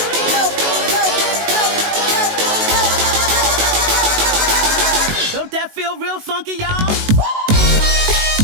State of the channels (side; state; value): left; late; 19 ms